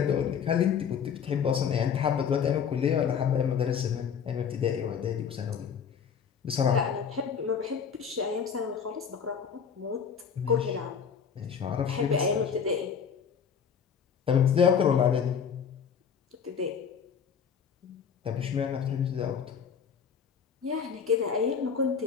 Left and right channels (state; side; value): quieter; right; 7.0 dB